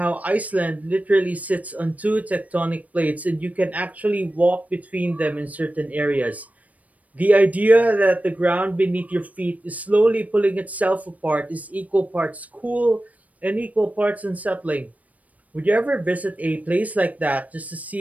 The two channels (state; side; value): late; left; 0.071 ms